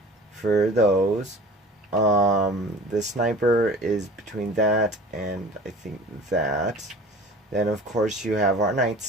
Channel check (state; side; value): normal; both; correlation 0.43